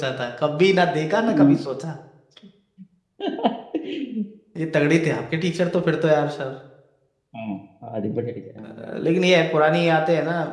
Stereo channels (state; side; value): identical; both; correlation 1.00